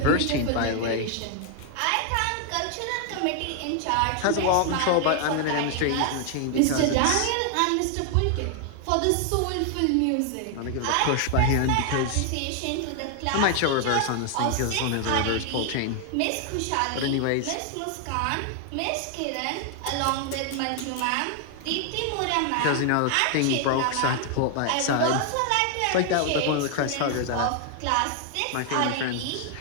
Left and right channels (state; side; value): different; both; correlation 0.00